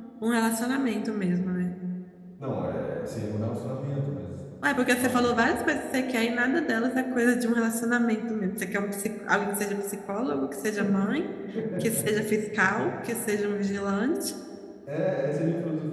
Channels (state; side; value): identical; both; correlation 1.00